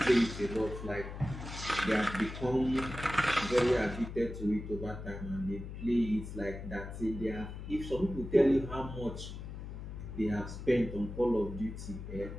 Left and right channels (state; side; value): noise; left; hum, 9 dB below the sound